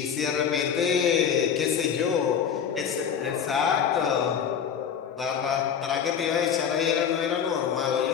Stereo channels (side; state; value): right; quieter; 7.8 dB